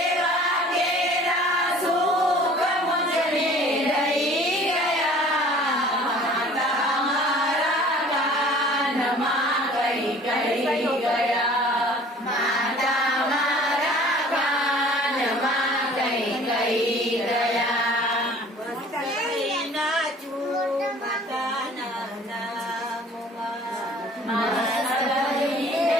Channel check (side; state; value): both; normal; correlation 0.49